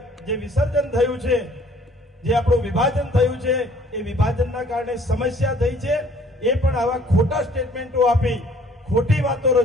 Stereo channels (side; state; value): both; normal; correlation 0.57